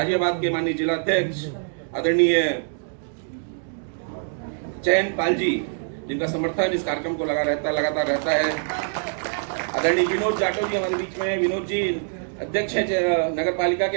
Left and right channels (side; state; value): left; silent; digital silence